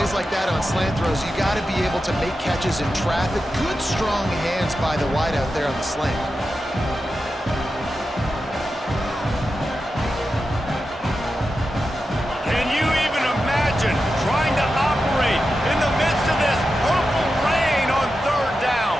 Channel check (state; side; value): normal; both; correlation 0.90